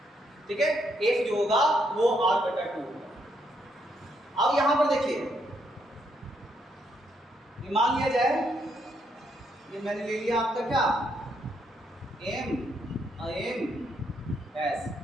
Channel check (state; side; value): normal; both; correlation 0.75